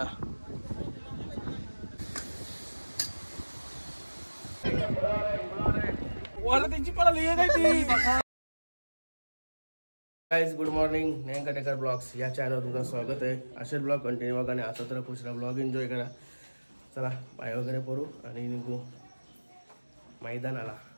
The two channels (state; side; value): inverted; both; correlation -1.00